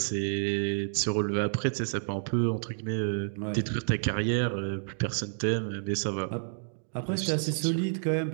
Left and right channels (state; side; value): silent; left; digital silence